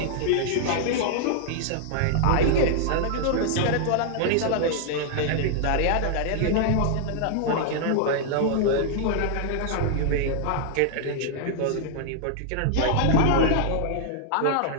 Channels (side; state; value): both; different; correlation -0.01